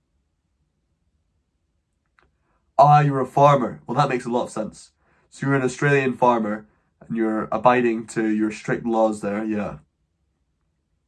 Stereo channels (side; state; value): both; identical; correlation 1.00